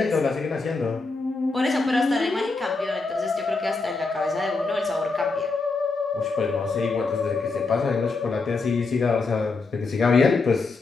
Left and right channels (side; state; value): right; quieter; 3.9 dB